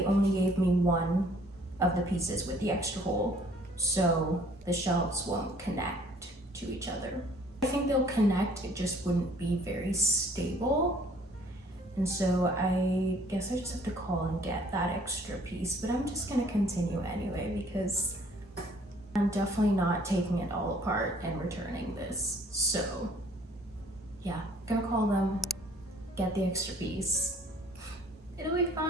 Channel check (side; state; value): both; normal; correlation 0.57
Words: only gave me one of the pieces with the extra hole, so the shelves won't connect to each other. I think they'll connect, it just wouldn't be very stable. And so I guess I just have to call and get that extra piece, but I'm just gonna continue anyway because I'm definitely not taking it all apart and returning this. So yeah, gonna call them, get the extra piece. It'll be